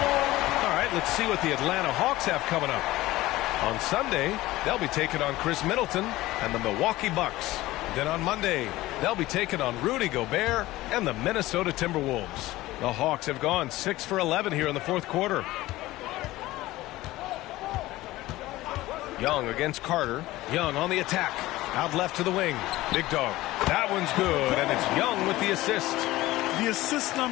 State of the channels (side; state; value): right; quieter; 17.5 dB